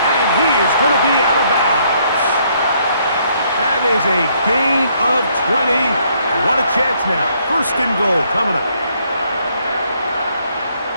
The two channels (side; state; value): both; inverted; correlation -0.68